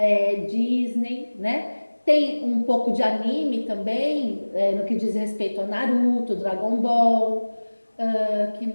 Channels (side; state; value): both; inverted; correlation -1.00